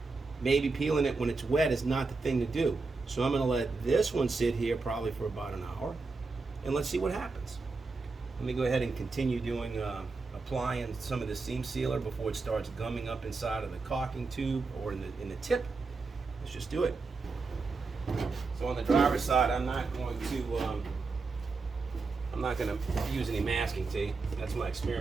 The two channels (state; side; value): quieter; left; 4.1 dB